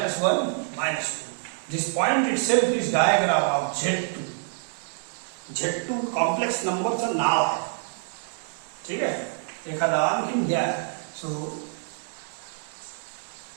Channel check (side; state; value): left; silent; digital silence